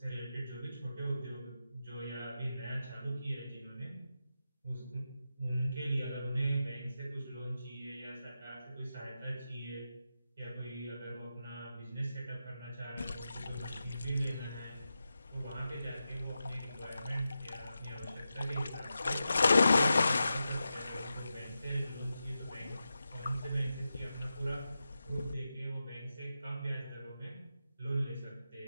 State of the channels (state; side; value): inverted; both; correlation -0.90